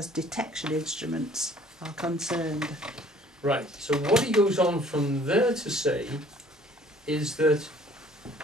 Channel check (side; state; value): both; normal; correlation 0.55